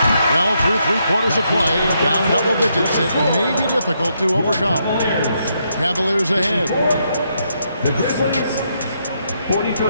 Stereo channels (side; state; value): both; inverted; correlation -0.78